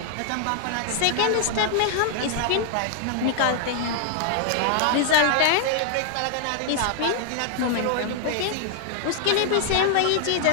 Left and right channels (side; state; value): both; different; correlation 0.00